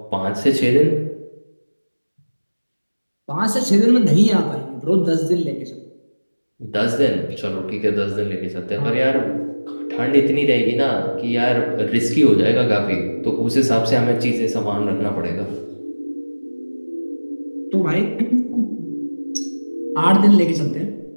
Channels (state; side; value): inverted; both; correlation -1.00